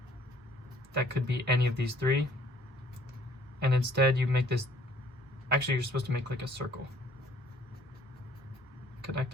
That could be any of these 3. And instead you make this, actually you're supposed to make like a circle,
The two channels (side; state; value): both; normal; correlation 0.59